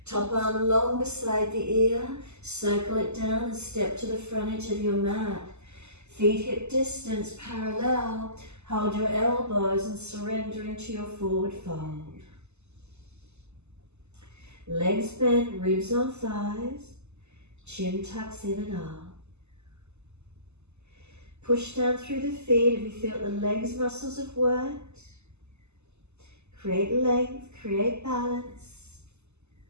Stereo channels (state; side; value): late; left; 0.82 ms